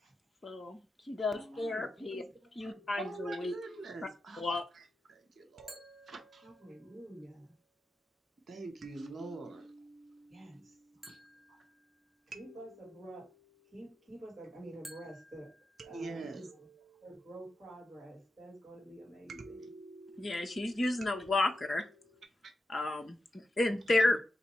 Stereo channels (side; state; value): both; normal; correlation 0.89